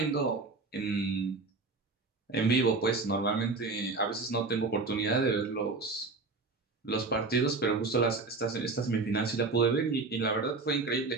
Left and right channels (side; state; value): left; quieter; 3.8 dB